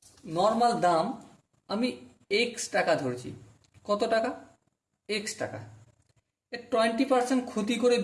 নর্মাল দাম আমি এক্স টাকা ধরছি। কত টাকা? এক্স টাকা। এ 20% ক্ষতি করে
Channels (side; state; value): both; identical; correlation 1.00